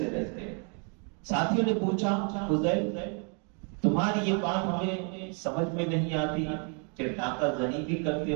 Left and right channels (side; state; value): left; quieter; 38.9 dB